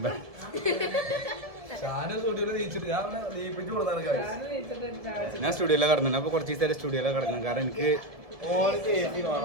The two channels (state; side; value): late; left; 1.7 ms